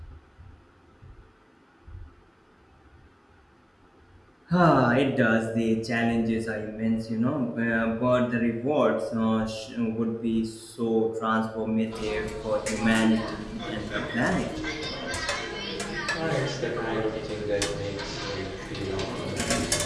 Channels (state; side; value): identical; both; correlation 1.00